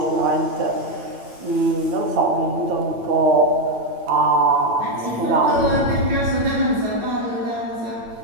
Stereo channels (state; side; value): late; left; 8.9 ms